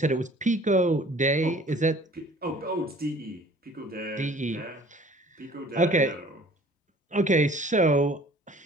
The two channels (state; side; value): normal; both; correlation 0.51